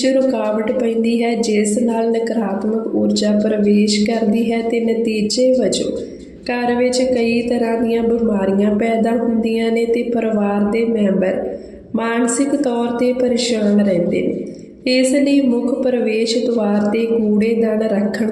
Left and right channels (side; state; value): both; identical; correlation 1.00